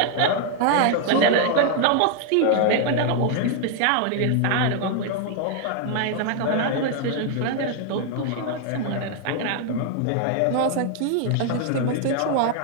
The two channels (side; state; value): both; different; correlation 0.00